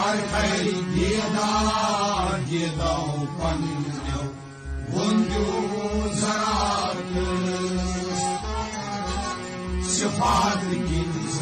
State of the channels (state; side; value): identical; both; correlation 1.00